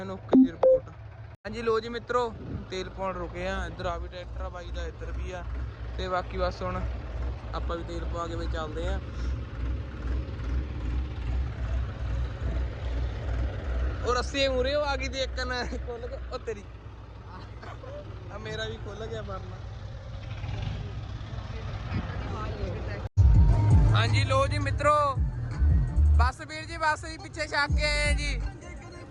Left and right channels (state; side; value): identical; both; correlation 1.00